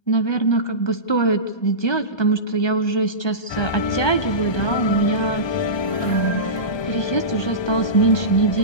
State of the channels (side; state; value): right; late; 1.2 ms